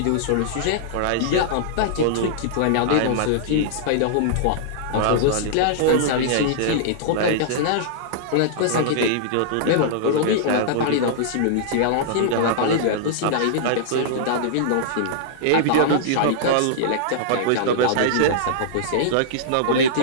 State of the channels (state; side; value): different; both; correlation -0.02